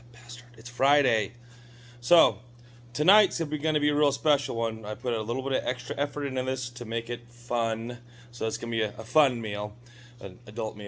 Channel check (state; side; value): identical; both; correlation 1.00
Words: bastard. It's Friday. So, tonight's going to be a real special one. I put a little bit of extra effort into this to make it fun. So, it's going to be a fun meal, an adult